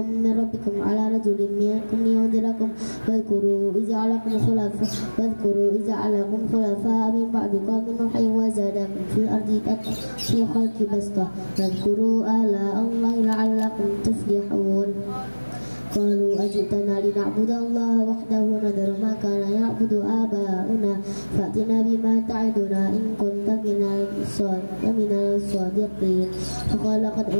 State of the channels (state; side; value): inverted; both; correlation -1.00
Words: من ربكم على رجل منكم لينذركم واذكروا إذ جعلكم خلفاء من بعد قوم نوح وزادكم في الأرض في خلق بسطة واذكروا آلاء الله لعلكم تفلحون قالوا أجئتنا لنعبد الله وحده ونذر ما كان يعبد آباؤنا فأتنا بما تعدنا إن كنت من الصادقين فقال قد